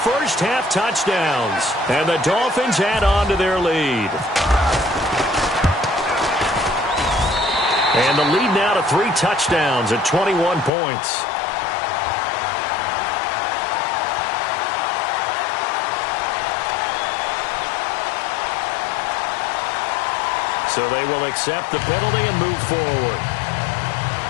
touchdowns. And the Dolphins add on to their lead. And the lead now to 3 touchdowns at 21 points. So they will accept the penalty and move forward.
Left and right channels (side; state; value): right; drops out; at 10.7 s